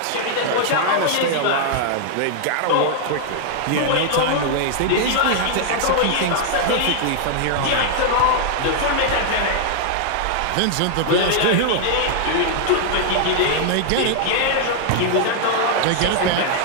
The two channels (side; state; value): both; different; correlation 0.00